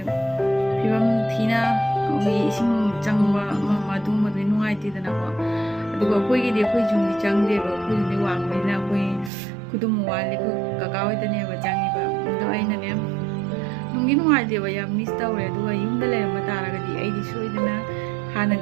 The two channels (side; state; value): left; drops out; at 9.3 s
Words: phibam thina koi ising changba madung madui nungaitidana ko. Aduga koi gi koi jungdi changde ba koi jungdi wangnina koi kudum wali ko kakawai tane ba jangi ba do ai na ne nungi nuai de ba ya miss tawre do ga yum da le ma tara ga di ai di soi dana hana